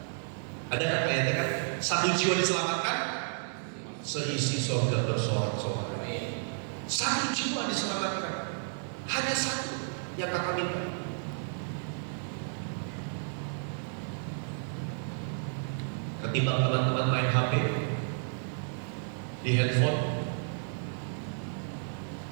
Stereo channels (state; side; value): silent; left; digital silence